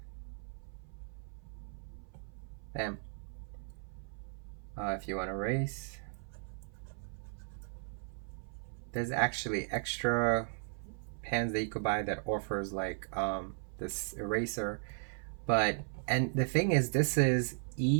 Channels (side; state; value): left; silent; 53 dB below the other